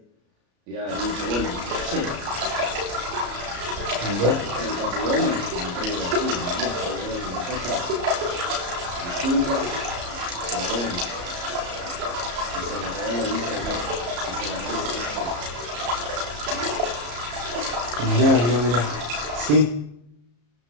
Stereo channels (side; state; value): left; late; 34 ms